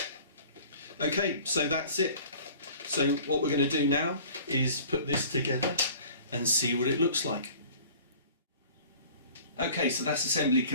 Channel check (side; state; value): both; inverted; correlation -0.46